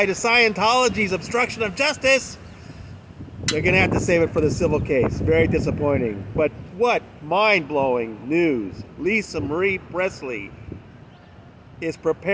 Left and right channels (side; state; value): both; identical; correlation 1.00